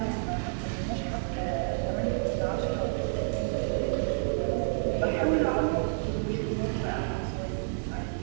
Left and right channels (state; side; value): silent; left; 58 dB below the other